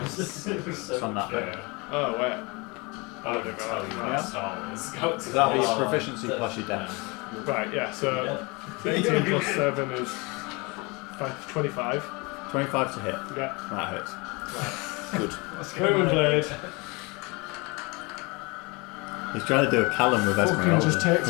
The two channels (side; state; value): right; quieter; 27.6 dB